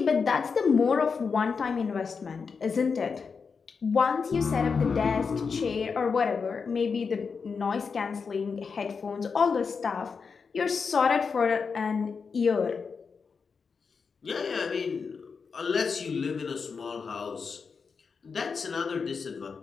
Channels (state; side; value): quieter; right; 5.4 dB